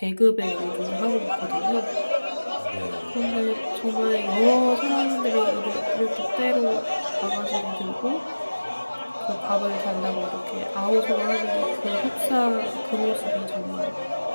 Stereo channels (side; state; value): both; inverted; correlation -1.00